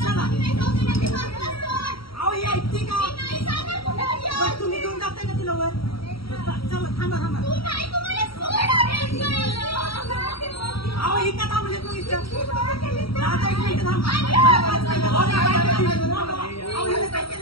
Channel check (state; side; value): late; right; 0.75 ms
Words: तुम्ही घेऊन जाताय ना तिला वर चला थांबा थांबा अहो इथं थांबले तू इथं आता एक मिनिट थांबा